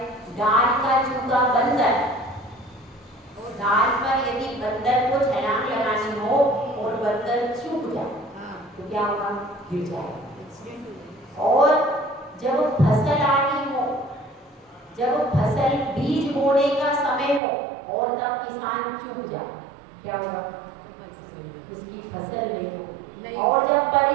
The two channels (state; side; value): drops out; left; at 17.4 s